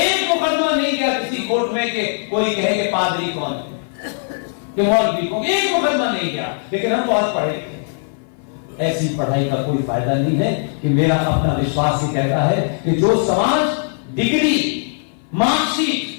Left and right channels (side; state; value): right; silent; 57 dB below the other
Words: मुकदमा नहीं गया किसी कोर्ट में कि कोई कहे कि पादरी कौन है, कि मौलवी कौन, एक मुकदमा नहीं गया। लेकिन हम बहुत पढ़े थे, ऐसी पढ़ाई का कोई फायदा नहीं है। कि मेरा अपना विश्वास ही कहता है कि जो समाज डिग्री,